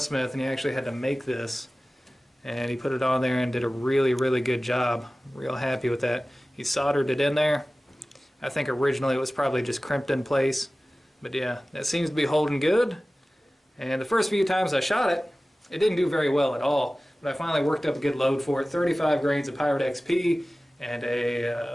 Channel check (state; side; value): normal; both; correlation 0.97